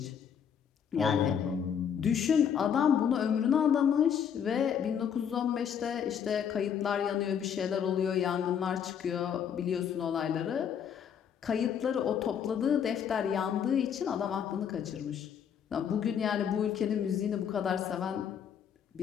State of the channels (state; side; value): quieter; right; 8.1 dB